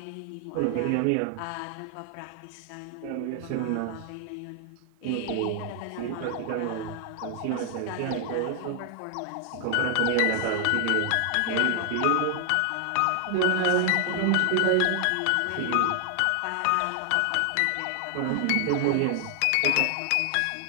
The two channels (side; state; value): both; different; correlation 0.00